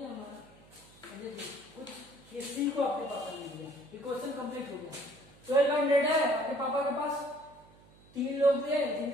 हमारा। देखिए कुछ ये सी को आपके पापा ने दिया, ये क्वेश्चन कंप्लीट हो गया। 1200 है आपके पापा के पास। 3 लोग थे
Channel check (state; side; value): noise; right; hum, 26 dB below the sound